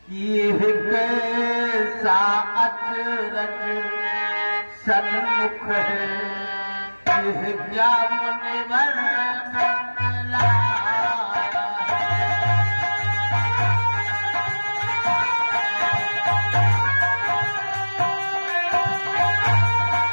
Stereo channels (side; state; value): both; inverted; correlation -1.00